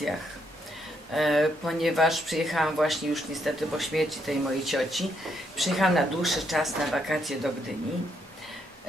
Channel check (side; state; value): both; normal; correlation 0.75